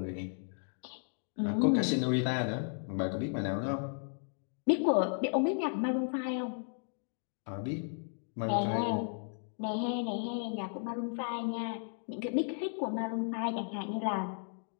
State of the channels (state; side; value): silent; right; 55 dB below the other